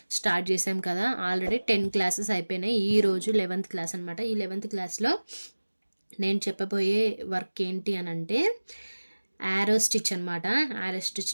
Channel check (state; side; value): inverted; both; correlation -1.00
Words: స్టార్ట్ చేసాం కదా. ఆల్రెడీ 10 క్లాసెస్ అయిపోయినాయి. ఈరోజు 11th క్లాస్ అనమాట. ఈ 11th క్లాస్లో నేను చెప్పబోయే వర్క్ ఏంటి అని అంటే యారో స్టిచ్ అనమాట. యారో